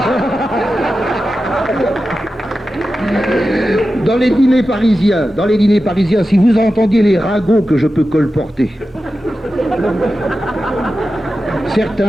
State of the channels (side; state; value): both; normal; correlation 0.92